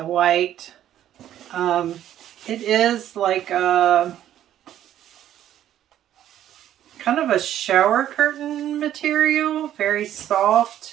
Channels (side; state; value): left; quieter; 11.6 dB